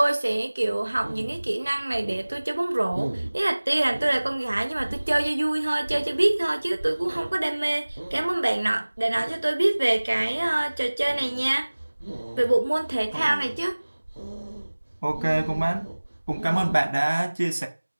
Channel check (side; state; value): both; inverted; correlation -1.00